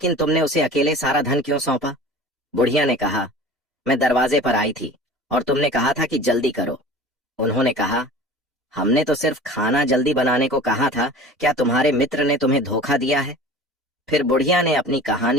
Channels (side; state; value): both; normal; correlation 0.39